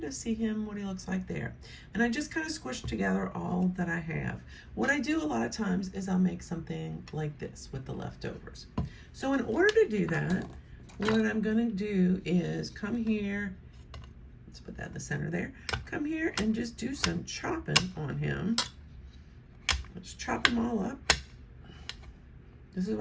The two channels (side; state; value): both; identical; correlation 1.00